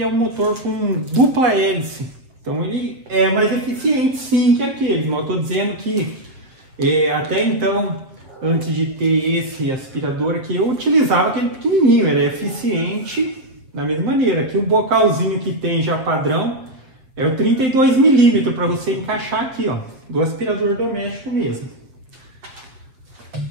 é um motor com dupla hélice. Então ele é mais eficiente, sim, que aquele. Não estou dizendo que até então, antes de ter esse aspirador aqui, eu utilizava aquele pequenininho, era eficiente da mesma maneira. Aqui o bocalzinho que tem já padrão É o 32 milímetros para você encaixar aqui, ó, do aspirador doméstico mesmo.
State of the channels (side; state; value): left; late; 7.8 ms